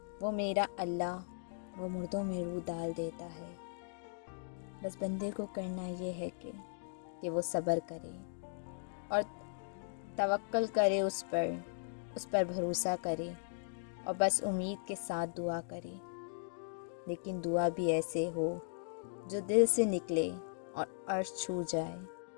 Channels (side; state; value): right; silent; digital silence